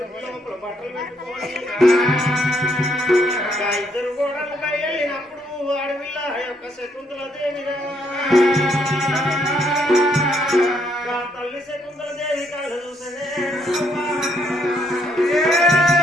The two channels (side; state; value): both; normal; correlation 0.71